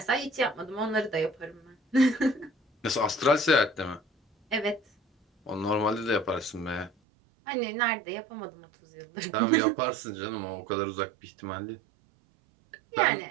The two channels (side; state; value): left; drops out; at 6.9 s